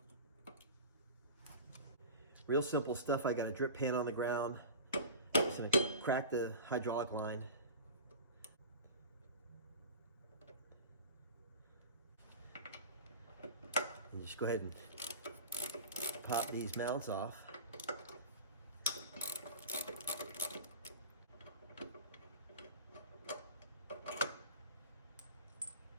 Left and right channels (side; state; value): both; inverted; correlation -0.34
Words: Real simple stuff. I got a drip pan on the ground. Just going to crack the hydraulic line. And just go ahead and pop these mounts off.